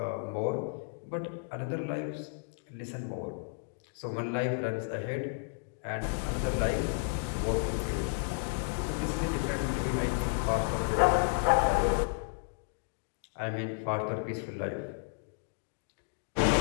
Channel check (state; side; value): silent; right; digital silence